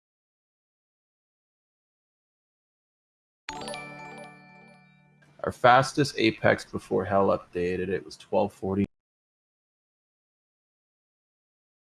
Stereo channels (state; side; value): identical; both; correlation 1.00